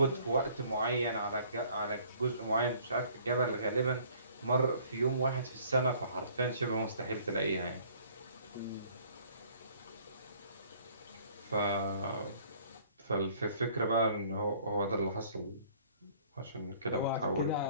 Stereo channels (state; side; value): inverted; both; correlation -0.56